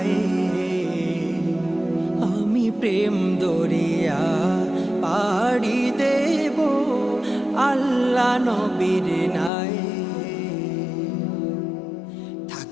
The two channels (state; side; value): drops out; right; at 9.5 s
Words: আমি প্রেম দরিয়া পাড়ি দেব আল্লাহ নবীর নাই।